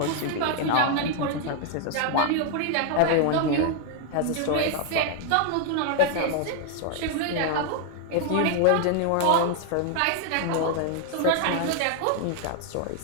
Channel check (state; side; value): different; both; correlation 0.00